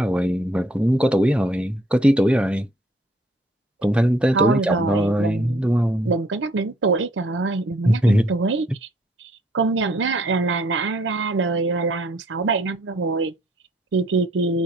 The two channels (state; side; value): normal; both; correlation 0.63